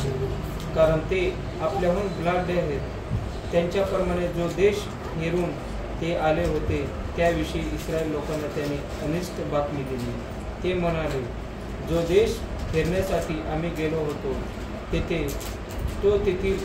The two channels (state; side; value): identical; both; correlation 1.00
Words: कारण ते आपल्याहून बलाढ्य आहेत. त्यांच्याप्रमाणे जो देश हेरून ते आले होते त्याविषयी इस्रायल लोकांना त्यांनी अनिष्ट बातमी दिली. ते म्हणाले, जो देश फिरण्यासाठी आम्ही गेलो होतो तो तेथील